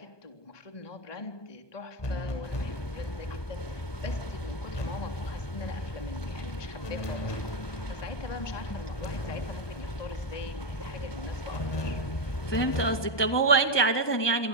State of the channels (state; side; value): late; right; 1.2 ms